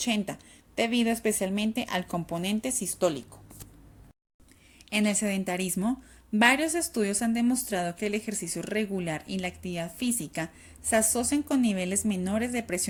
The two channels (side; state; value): both; identical; correlation 1.00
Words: debido especialmente al componente sistólico. En el sedentarismo, varios estudios han demostrado que el ejercicio regular y la actividad física se asocian con niveles menores de